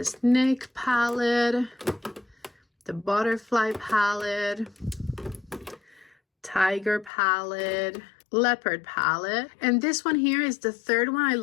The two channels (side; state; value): right; drops out; at 7.1 s